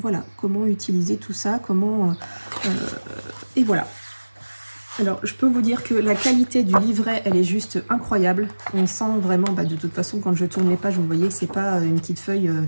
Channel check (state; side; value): inverted; both; correlation -1.00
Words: comment utiliser tout ça, comment... et voilà. Alors, je peux vous dire que la qualité du livret, elle est juste incroyable. On sent vraiment, bah, de toute façon, quand je tourne les pages, vous voyez que c'est pas une petite feuille